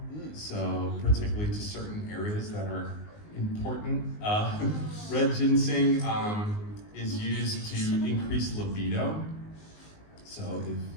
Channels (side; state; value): right; late; 19 ms